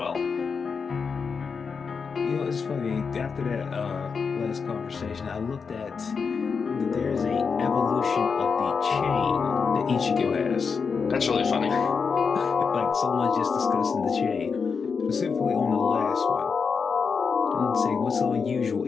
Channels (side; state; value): right; quieter; 5.5 dB